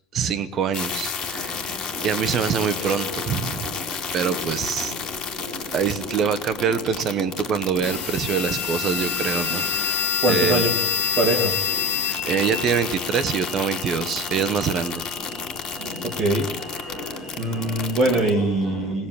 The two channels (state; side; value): normal; both; correlation 0.36